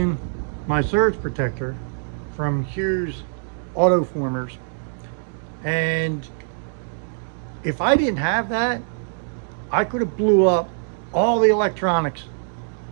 my surge protector from Hughes auto formers, and if I didn't have that, I could have blew up all the electronics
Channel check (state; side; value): silent; left; digital silence